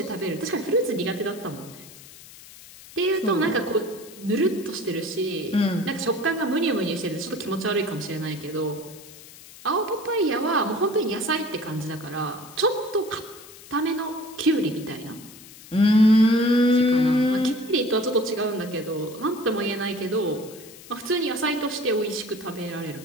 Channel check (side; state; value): left; noise; hiss, 19 dB below the sound